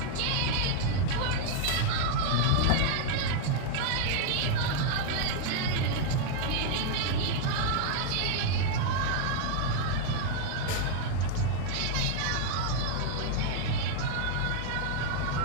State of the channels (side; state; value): both; different; correlation 0.00